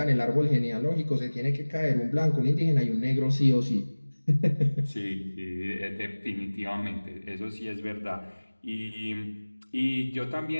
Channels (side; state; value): both; inverted; correlation -1.00